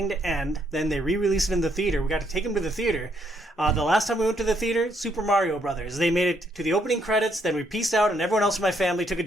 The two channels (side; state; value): both; normal; correlation 0.72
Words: to end. Then they re-released it in the theater. We got to take them to the theater. The last time we went to the theater, Super Mario Brothers. They made it to the opening credits, then we pieced out, and everyone else in my family took a